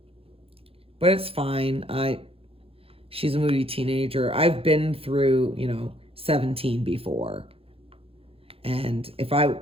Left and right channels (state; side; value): late; left; 0.27 ms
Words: But it's fine. She's a moody teenager. I've been through, you know, 17 before. And if I